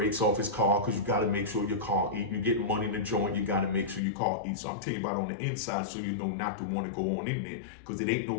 off his car because you got to make sure your car eat. You get money in the joint, you got to make sure your car eats. So I'm telling you about on the inside so you know not to want to go on in there, because it ain't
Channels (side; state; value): right; drops out; at 4.0 s